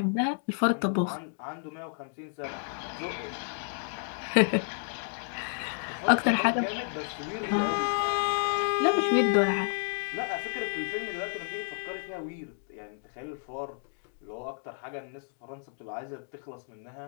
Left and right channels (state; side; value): silent; right; 57 dB below the other